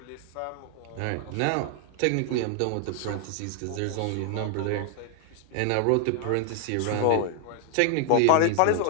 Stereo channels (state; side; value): different; both; correlation 0.00